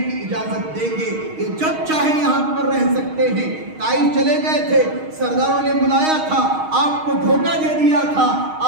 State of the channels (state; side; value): late; left; 6.4 ms